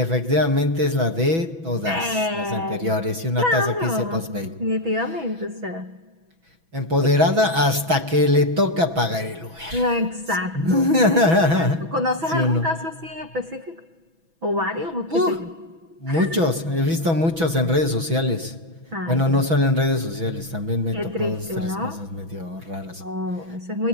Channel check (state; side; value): late; left; 6.1 ms